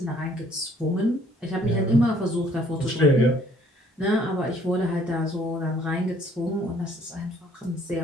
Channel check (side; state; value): both; normal; correlation 0.60